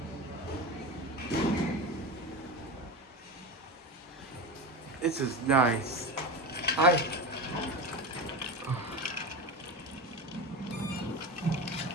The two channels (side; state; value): both; normal; correlation 0.23